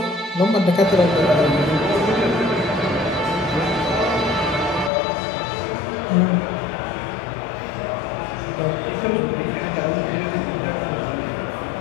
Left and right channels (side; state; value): right; drops out; at 4.9 s